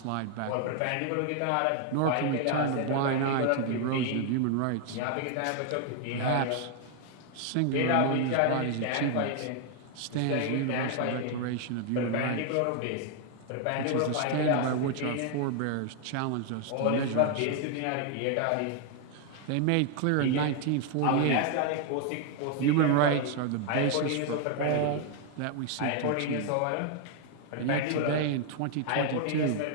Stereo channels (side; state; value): both; different; correlation 0.00